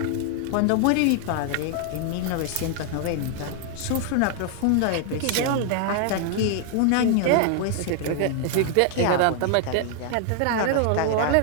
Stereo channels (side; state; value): both; different; correlation 0.00